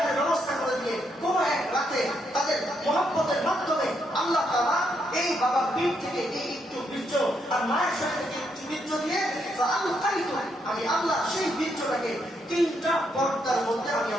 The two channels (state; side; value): normal; both; correlation 0.77